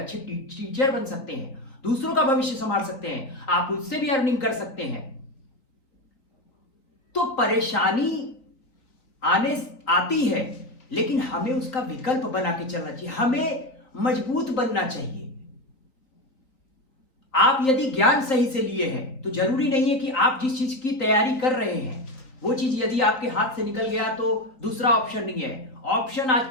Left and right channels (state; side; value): late; right; 3.9 ms